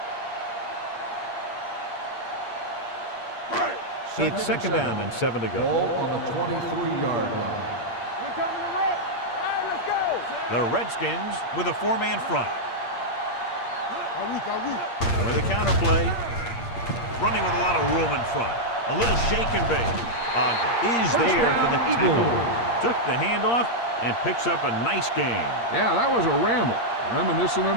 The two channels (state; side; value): late; right; 8.6 ms